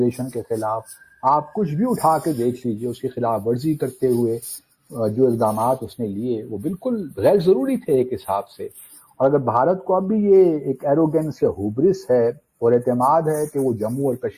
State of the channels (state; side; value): identical; both; correlation 1.00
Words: کے خلاف، آپ کچھ بھی اٹھا کے دیکھ لیجئے، اس کی خلاف ورزی کرتے ہوئے جو اقدامات اس نے لیے وہ بالکل غیر ضروری تھے ایک حساب سے. اور اگر بھارت کو اب بھی یہ ایک ایروگنس یا ہوبرس ہے اور اعتماد ہے کہ وہ جموں اور